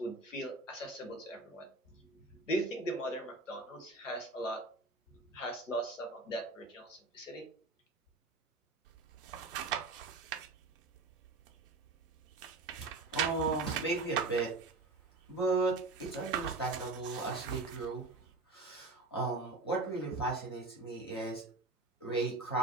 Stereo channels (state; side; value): quieter; left; 3.2 dB